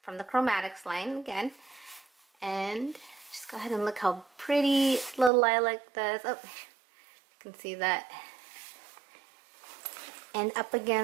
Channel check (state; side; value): drops out; left; at 5.3 s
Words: from the Chromatics line again. And just go ahead and look how pretty little lilac does. Oh, you can see that. And up